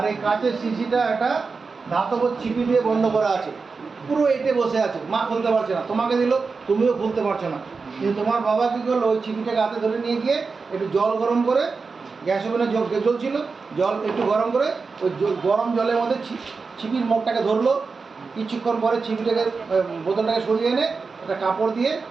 এই কাঁচের শিশিটা একটা ধাতব ছিপি দিয়ে বন্ধ করা আছে, পুরো এঁটে বসে আছে, মা খুলতে পারছে না, তোমাকে দিল তুমিও খুলতে পারছো না। কিন্তু তোমার বাবা কী করলো, ওই ছিপিটাকে হাতে ধরে নিয়ে গিয়ে একটু জল গরম করে, গ্যাস ওভেনে জল ছিল, জল একটু গরম করে ওই গরম জলের মধ্যে ছিপির মুখটাকে ধরলো, কিছুক্ষণ পরে ছিপিটাকে বোতলটাকে সরিয়ে এনে একটা কাপড় দিয়ে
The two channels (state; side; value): quieter; left; 4.6 dB